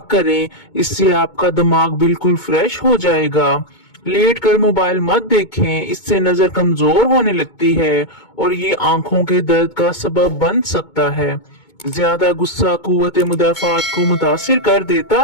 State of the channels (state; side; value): late; right; 2.2 ms